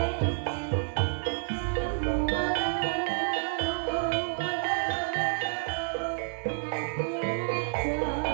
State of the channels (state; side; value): silent; left; 58 dB below the other